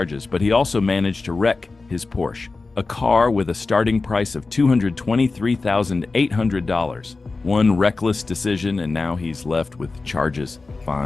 but he also managed to wreck his Porsche, a car with a starting price of $223,800. One reckless decision, and now he's left with charges,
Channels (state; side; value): quieter; right; 3.8 dB